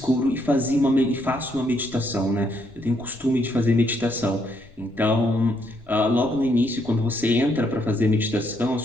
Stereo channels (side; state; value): left; noise; rumble, 25 dB below the sound